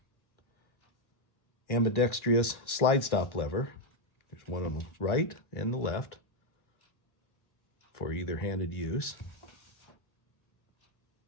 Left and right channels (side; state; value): right; late; 1.6 ms